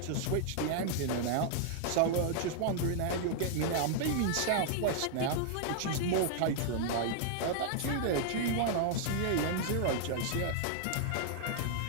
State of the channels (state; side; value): different; both; correlation -0.01